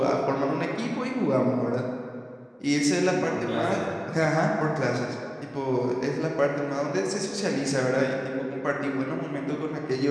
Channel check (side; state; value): both; identical; correlation 1.00